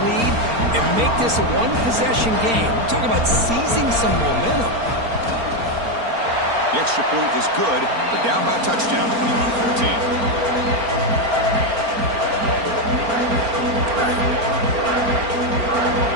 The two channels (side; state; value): left; late; 4.4 ms